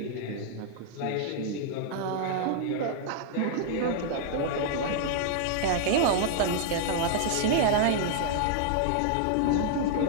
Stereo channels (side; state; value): both; different; correlation 0.00